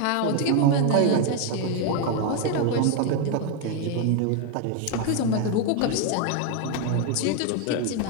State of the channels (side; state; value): both; different; correlation 0.01